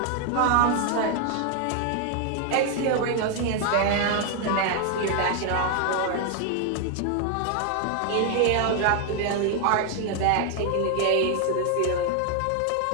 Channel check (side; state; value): both; different; correlation 0.00